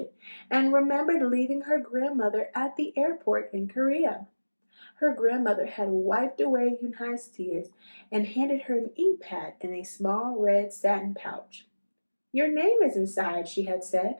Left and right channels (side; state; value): both; inverted; correlation -1.00